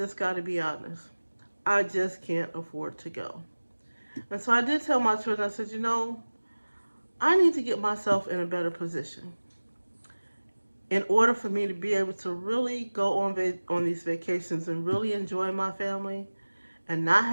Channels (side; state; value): both; inverted; correlation -1.00